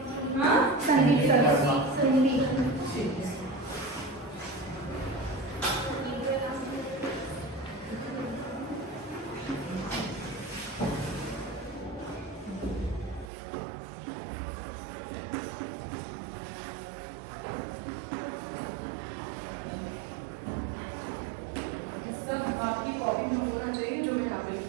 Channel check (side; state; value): left; drops out; at 13.3 s